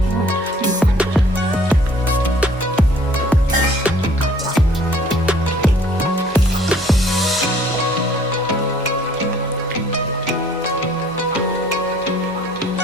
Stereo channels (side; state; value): both; normal; correlation 0.56